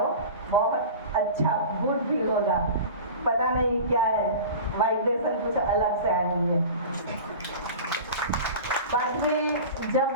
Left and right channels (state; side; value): inverted; both; correlation -0.34